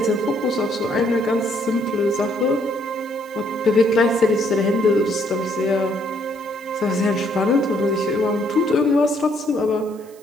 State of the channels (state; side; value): noise; right; hiss, 26 dB below the sound